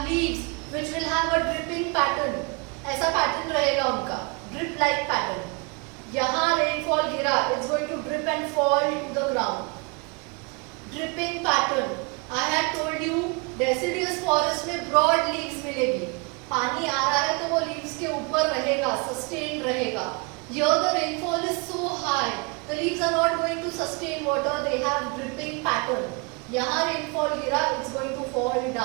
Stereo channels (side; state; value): left; quieter; 31.4 dB